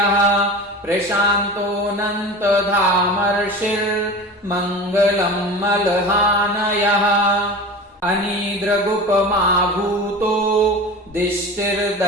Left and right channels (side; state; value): both; normal; correlation 0.33